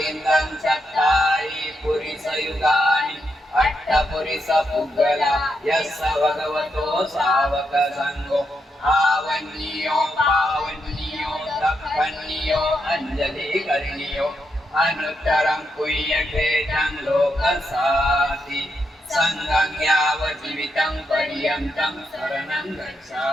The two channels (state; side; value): normal; both; correlation 0.82